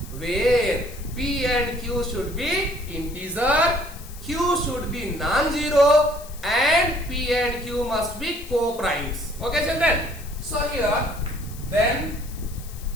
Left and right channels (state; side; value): noise; left; hiss, 18 dB below the sound